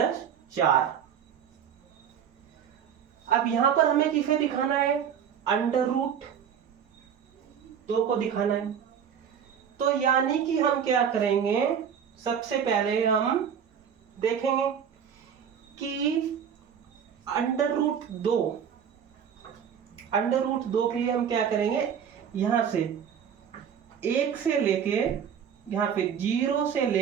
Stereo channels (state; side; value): quieter; left; 8.1 dB